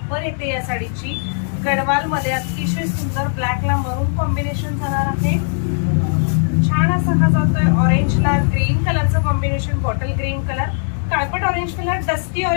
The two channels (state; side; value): silent; right; digital silence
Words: येते या साडीची गडवाल मध्ये, अतिशय सुंदर ब्लॅकला मरून कॉम्बिनेशन जाणार आहे। छान असा हा जातोय ऑरेंजला ग्रीन कलरचं कॉम्बिनेशन, बॉटल ग्रीन कलर, काळपट orange colour, dusty